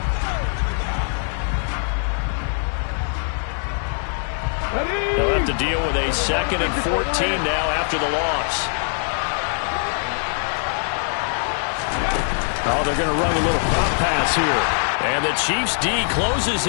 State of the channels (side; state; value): right; silent; 57 dB below the other